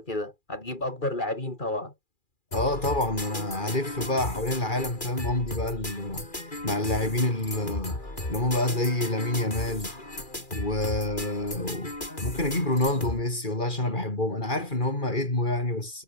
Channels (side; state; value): right; late; 2.4 ms